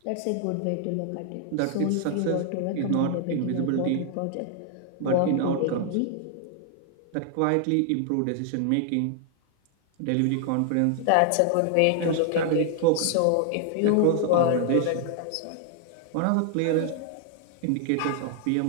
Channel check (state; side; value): different; both; correlation 0.00